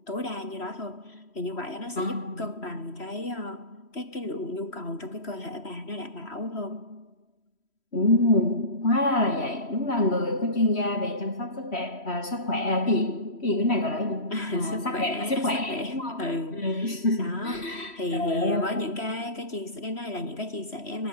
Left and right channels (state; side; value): late; right; 3.1 ms